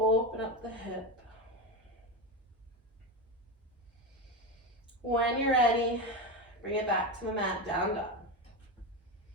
up the hip. When you're ready, bring it back to the mat, down dog.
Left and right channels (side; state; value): both; normal; correlation 0.16